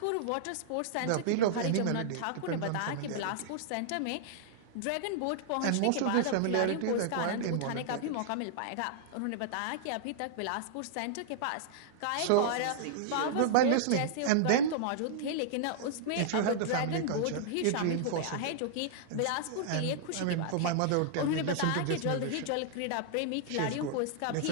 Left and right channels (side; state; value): both; different; correlation -0.01